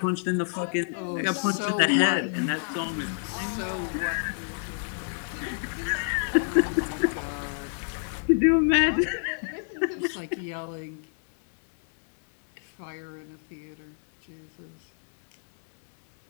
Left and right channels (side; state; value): right; silent; 60 dB below the other